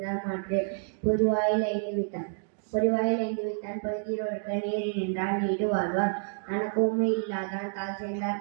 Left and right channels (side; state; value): left; silent; digital silence